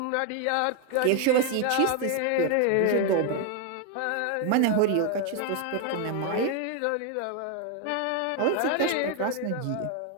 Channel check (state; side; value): different; both; correlation 0.01